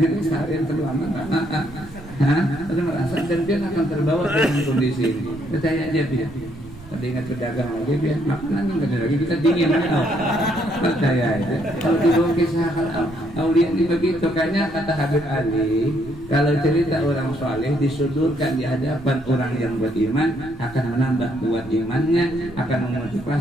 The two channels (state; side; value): noise; right; rumble, 17 dB below the sound